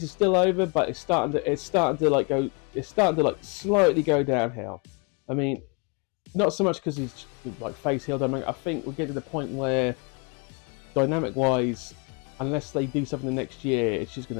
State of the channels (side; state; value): right; quieter; 33.6 dB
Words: is still over, but it's starting to slightly go downhill. I mean, not so much because he's like face heel. I think we'll get to the point where, dynamic wise, unless they do something the next year, it's just